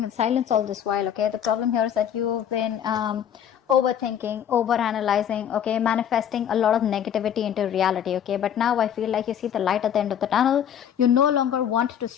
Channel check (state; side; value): quieter; right; 9.2 dB